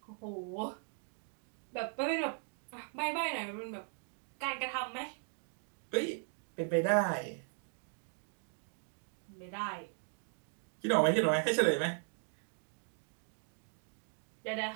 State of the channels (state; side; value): silent; left; 52 dB below the other